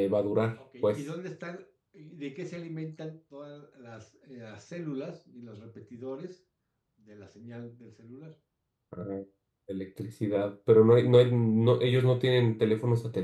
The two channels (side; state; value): both; identical; correlation 1.00